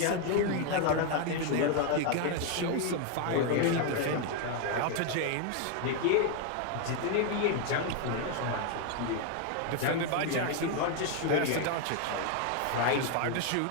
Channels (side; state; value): both; different; correlation 0.01